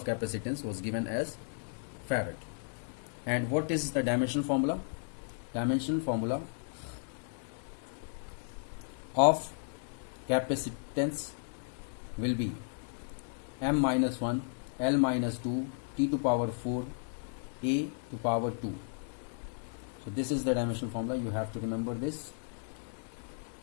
capacitance was given as Farad. And what is the dimensional formula? Dimensional formula of capacitance will be m minus 1 L minus 2 T to power 4 A to power 2. So this is the dimensional formula. You have to remember this.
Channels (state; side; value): silent; right; digital silence